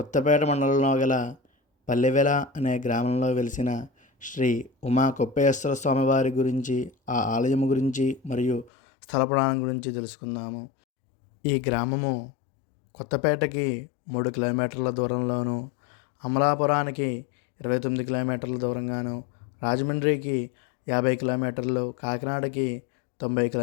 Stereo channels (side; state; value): right; drops out; at 8.7 s